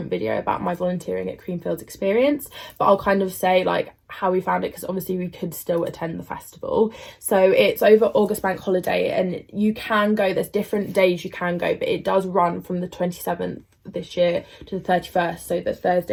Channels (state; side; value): identical; both; correlation 1.00